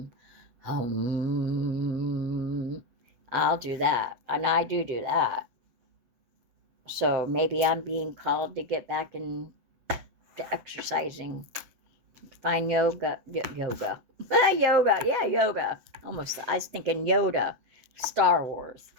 I'll do that. And I do that. So maybe I'm being called to get back into exercising. Find yoga. Yoga. Yeah, yoga. Almost, I was thinking Yoda. Star Wars.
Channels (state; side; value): late; left; 8.0 ms